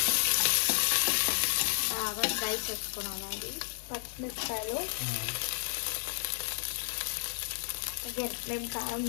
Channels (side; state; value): right; silent; digital silence